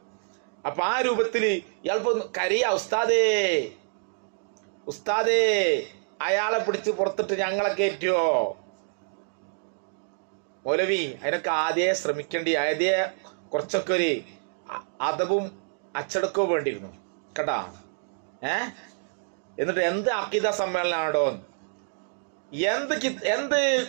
അപ്പൊ ആ രൂപത്തില് ഇയാളിപ്പോ കരയാ, ഉസ്താദേ ഉസ്താദേ അയാളെ പിടിച്ച് പുറത്തിട്ട് ഞങ്ങളെ കയറ്റുവോ? മൗലവി അതിനൊക്കെ ആദ്യമേ ശ്രമിക്കേണ്ടി, ആദ്യമേ കുറച്ചൊക്കെ ഒരു അദബും അച്ചടക്കവും വേണ്ടിയിരുന്നു കേട്ടാ. എന്നിട്ട് എന്ത് അഖീദ സമ്മേളനാണോ, എന്ത്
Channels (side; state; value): left; silent; digital silence